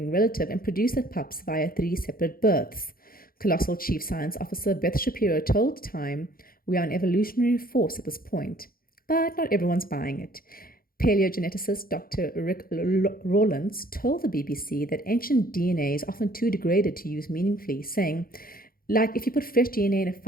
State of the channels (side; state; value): right; late; 0.42 ms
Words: relative, and produced the pups via 3 separate births. Colossal Chief Science Officer Beth Shapiro told Time, "We are an evolutionary force at this point." But not everyone's buying it. Paleogeneticist Dr. Rick Rawlins told the BBC that ancient DNA is often too degraded to use meaningfully, saying, like if you put fresh DNA in a